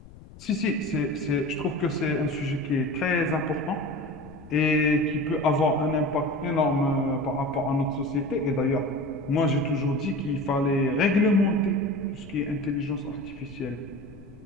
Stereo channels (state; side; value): noise; left; rumble, 19 dB below the sound